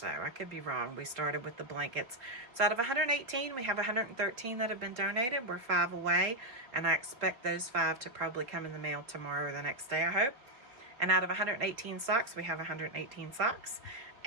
I could be wrong. We started with the blankets. So out of 118, we have 113 that have been donated. We're 5 away, and I expect those 5 to probably come in the mail tomorrow or the next day, I hope. And out of 118 socks, we have 118 socks.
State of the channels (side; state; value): left; late; 3.7 ms